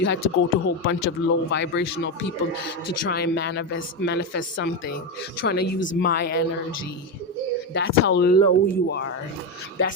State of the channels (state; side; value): normal; both; correlation 0.12